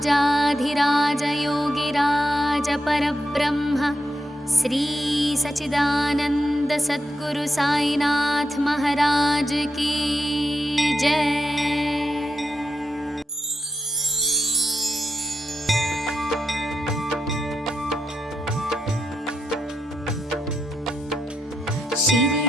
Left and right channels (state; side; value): normal; both; correlation 0.84